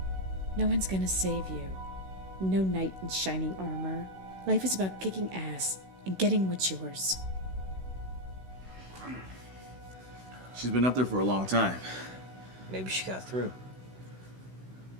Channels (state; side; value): late; left; 16 ms